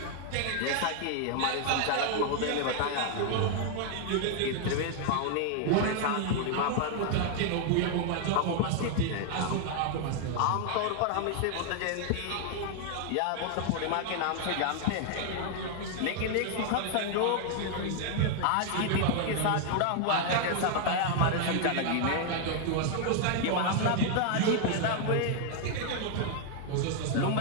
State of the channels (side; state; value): both; different; correlation 0.00